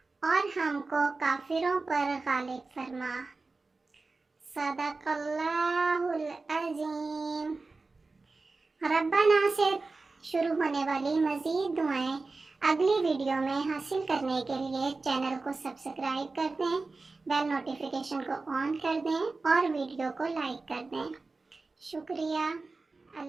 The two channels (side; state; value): left; quieter; 3.7 dB